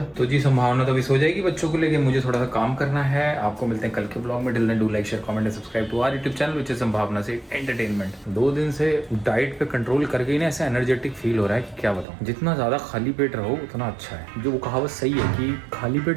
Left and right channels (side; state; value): left; drops out; at 12.1 s